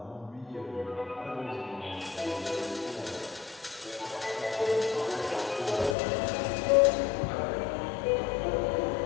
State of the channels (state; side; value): drops out; right; at 6.0 s